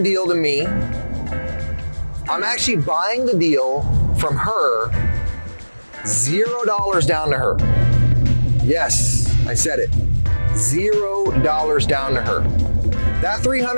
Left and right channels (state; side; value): inverted; both; correlation -1.00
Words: deal to me. I'm actually buying the deal from her, $0 down to her. Yes, I said it, $0 down to her. That